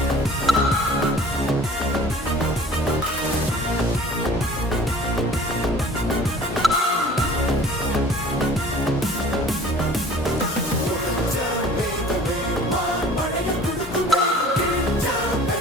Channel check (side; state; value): both; normal; correlation 0.47